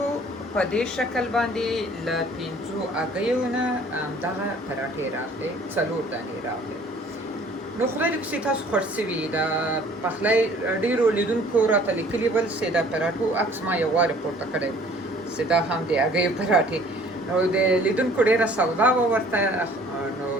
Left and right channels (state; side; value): normal; both; correlation 0.54